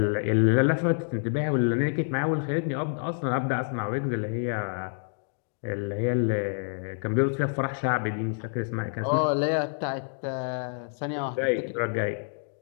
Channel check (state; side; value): silent; right; digital silence